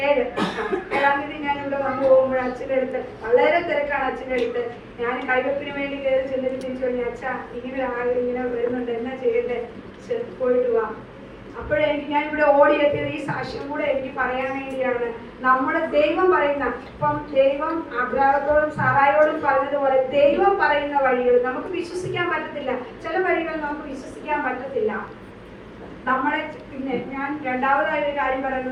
7-ാം തീയതി ഞാൻ ഇവിടെ വന്നു പോകുമ്പോൾ അച്ഛൻ്റെ അടുത്ത് വളരെ തിരക്കാണ്. അച്ഛൻ്റെ അടുത്ത് ഞാൻ കൈവെപ്പിന് വേണ്ടി കയറി ചെന്നിട്ട് തിരിച്ചു പറഞ്ഞു, അച്ഛ ഇങ്ങനെ വരുന്നുണ്ട്, എന്നാ ചെയ്യട്ടെ, പോയിട്ട് വാ. അപ്പോഴെനിക്ക് ഞാൻ ഇവിടെ ഓടിയെത്തിയത് ഈ സാക്ഷ്യം കൂടെ എനിക്ക് പറയാൻ വേണ്ടിയാണ്. നമ്മുടെ ദൈവം പറയുന്ന, ഇപ്പം ദൈവം അബ്രാഹത്തോടും സാറായോടും പറഞ്ഞതുപോലെ ദൈവം പറയുന്ന വഴികൾ നമുക്ക് വിശ്വസിക്കാൻ പറ്റത്തില്ല. ചില വഴികൾ നമുക്ക് വിശ്വസിക്കാൻ പറ്റത്തില്ല. നമ്മളെ പിന്നെ ഞാൻ രണ്ടാമതായ ഒരു കാര്യം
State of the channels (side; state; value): both; identical; correlation 1.00